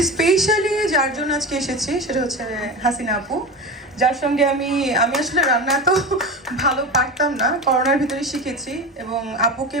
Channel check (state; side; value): normal; both; correlation 0.26